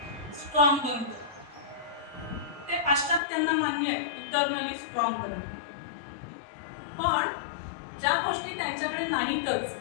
स्ट्रॉंग बनतो. ते पाश्चात्यांना मान्य आहे, इटर्नली स्ट्रॉंग बनतो. पण ज्या गोष्टी त्यांच्याकडे नाहीतच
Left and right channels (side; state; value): right; drops out; at 3.2 s